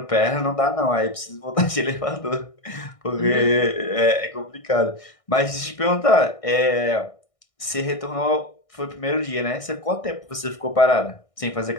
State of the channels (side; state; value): right; late; 1.6 ms